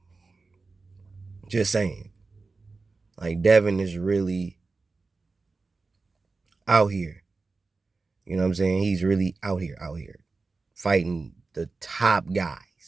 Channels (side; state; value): left; quieter; 3.9 dB